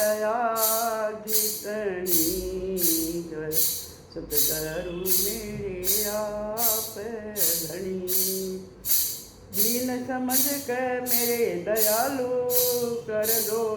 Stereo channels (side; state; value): both; identical; correlation 1.00